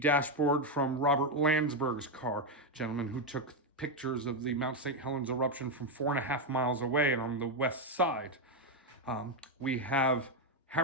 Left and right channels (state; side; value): normal; both; correlation 0.04